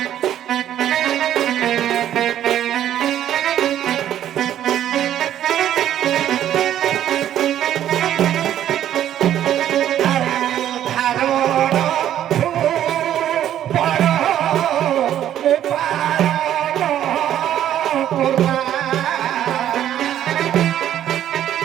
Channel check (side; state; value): left; quieter; 11.3 dB